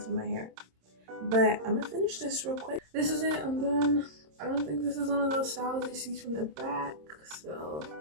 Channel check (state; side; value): late; left; 26 ms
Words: of my hair. But I'm gonna finish this real quick. This is it, I'm done. I don't think this is one of those styles you see from the back, so